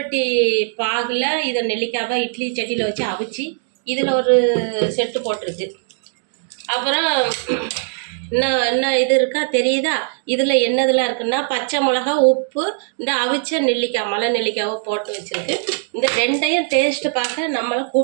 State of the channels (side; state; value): left; silent; digital silence